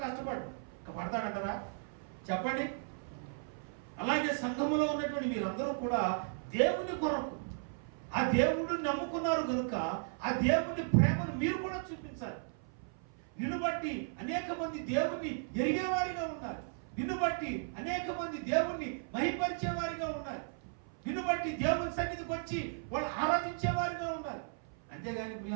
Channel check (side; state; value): left; silent; 54 dB below the other